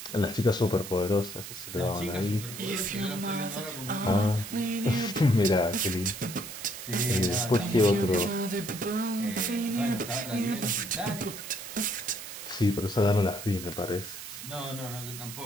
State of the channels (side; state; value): right; noise; hiss, 10 dB below the sound